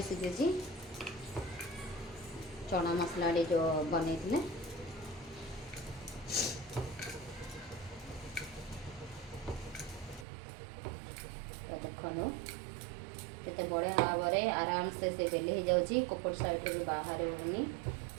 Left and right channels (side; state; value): left; drops out; at 10.2 s